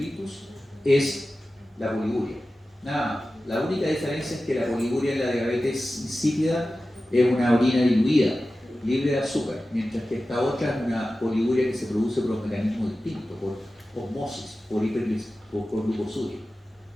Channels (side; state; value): both; normal; correlation 0.95